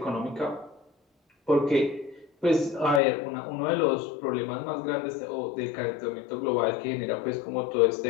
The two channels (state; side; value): drops out; right; at 3.0 s